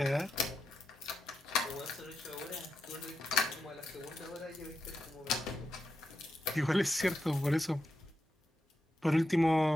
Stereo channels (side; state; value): both; normal; correlation 0.87